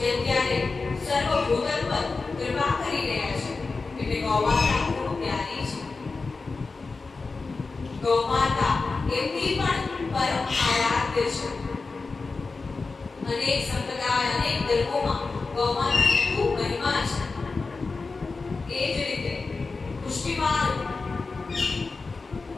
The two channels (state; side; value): quieter; right; 4.1 dB